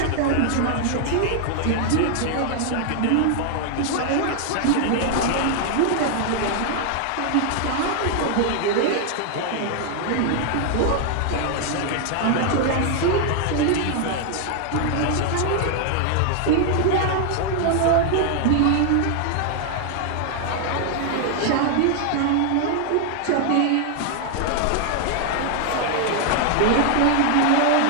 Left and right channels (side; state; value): both; different; correlation 0.00